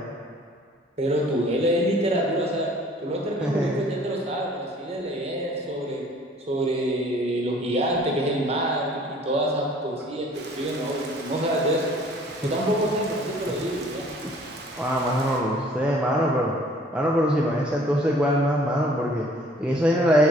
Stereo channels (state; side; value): normal; both; correlation 0.54